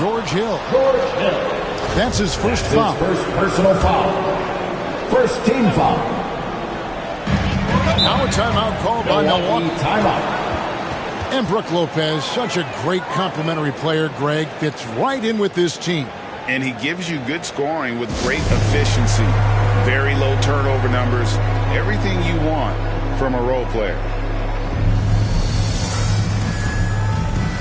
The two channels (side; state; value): both; identical; correlation 1.00